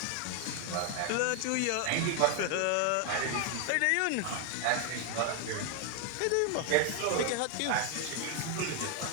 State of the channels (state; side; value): different; both; correlation 0.00